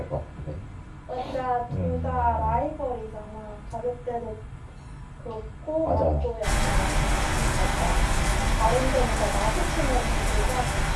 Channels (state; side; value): identical; both; correlation 1.00